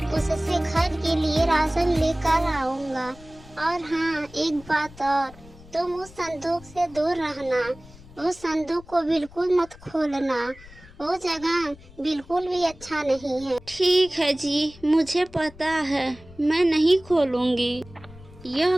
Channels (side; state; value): left; noise; rumble, 21 dB below the sound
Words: उससे घर के लिए राशन लेकर आऊंगा। और हाँ, एक बात और, तुम उस संदूक से दूर रहना। उस संदूक को बिल्कुल मत खोलना, वो जगह बिल्कुल भी अच्छा नहीं है। ठीक है जी, मुझे पता है, मैं नहीं खोलूंगी। यह